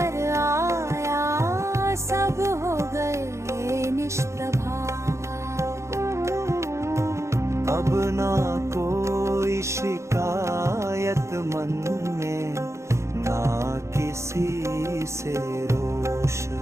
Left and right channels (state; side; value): late; left; 0.14 ms